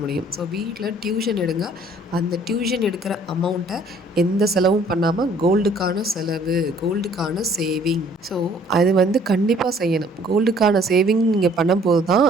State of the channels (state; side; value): normal; both; correlation 0.58